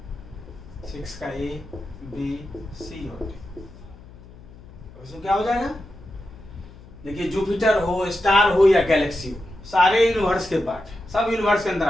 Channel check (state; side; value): noise; left; hum, 19 dB below the sound